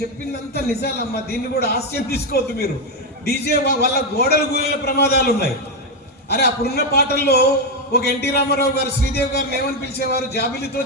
చెప్పిందంతా నిజాలమ్మా, దీన్ని కూడా హాస్యం తీసుకోవద్దు మీరు. డీజే వల్ల గోడలు గూలిన ప్రమాదాలు ఉన్నాయి. అరే అప్పుడున్న పాటల్లో ఒక ఎన్టీ రామారావు గారు శ్రీదేవి గారిని ఏమని పిలిచేవారు, జాబిలితో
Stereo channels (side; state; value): both; normal; correlation 0.05